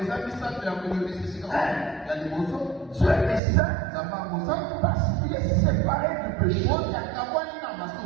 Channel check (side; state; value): left; drops out; at 3.4 s